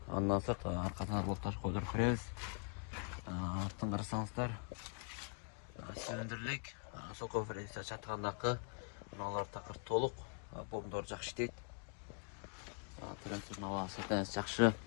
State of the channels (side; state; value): right; quieter; 37.7 dB